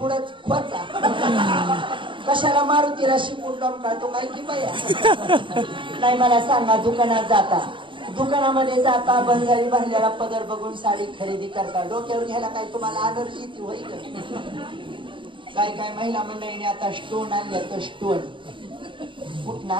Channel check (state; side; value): late; left; 0.24 ms